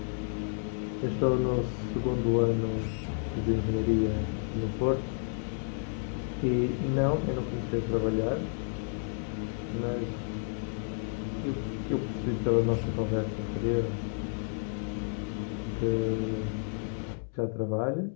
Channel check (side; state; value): right; silent; 56 dB below the other